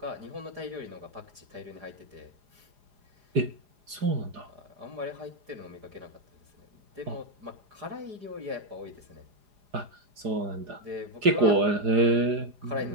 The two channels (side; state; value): left; late; 4.9 ms